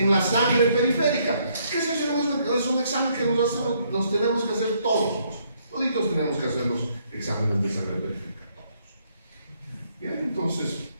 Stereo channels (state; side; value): inverted; both; correlation -0.70